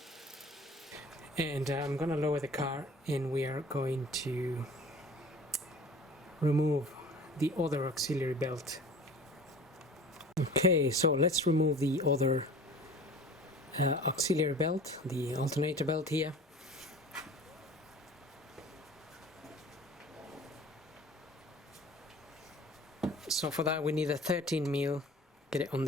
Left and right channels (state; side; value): normal; both; correlation 0.43